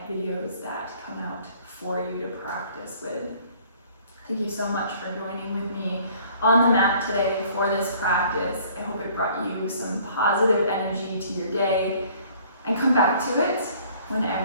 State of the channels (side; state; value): both; inverted; correlation -0.56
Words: videos that come out for you to practice with. Thank you so much for joining with me on the mat today for this practice. I hope it brought you some positive energy to your day, and come back to it